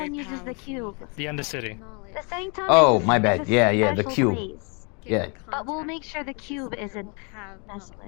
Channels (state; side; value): quieter; right; 34.6 dB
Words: uses the cube. The Undercity. The sanctum Oh, is my is bad. a Yeah, yeah, the special cube. place. Yeah, But we'll make sure the cube isn't messed